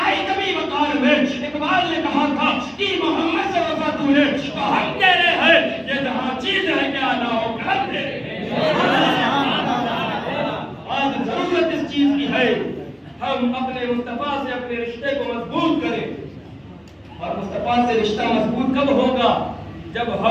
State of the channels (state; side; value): identical; both; correlation 1.00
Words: آئی کبھی وقار میں. اقبال نے کہا تھا کہ محمد سے وفا تو نے تو ہم کہہ رہے ہیں یہ جہاں چیز ہے کیا نہ ہو کر دے. آج ضرورت اس چیز کی ہے ہم اپنے مصطفیٰ سے اپنے رشتے کو مضبوط کریں. اور مصطفیٰ سے رشتہ مضبوط کب ہوگا؟ جب